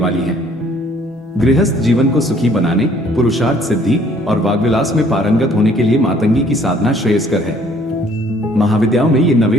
है। गृहस्थ जीवन को सुखी बनाने, पुरुषार्थ सिद्धि और वाग्विलास में पारंगत होने के लिए मातंगी की साधना श्रेयस्कर है। महाविद्याओं में ये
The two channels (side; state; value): both; normal; correlation 0.60